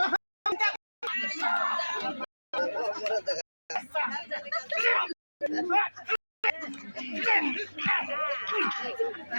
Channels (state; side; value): inverted; both; correlation -1.00